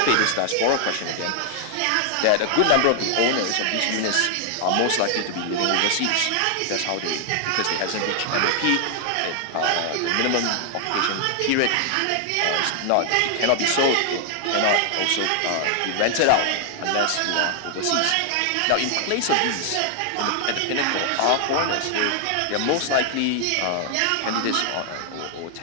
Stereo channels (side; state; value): both; different; correlation 0.00